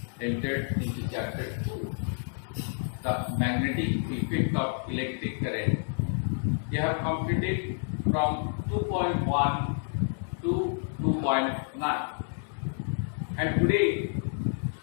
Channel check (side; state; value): right; silent; 58 dB below the other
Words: entered into chapter 2, the magnetic effect of electric current. We have completed from 2.1 to 2.9, and today,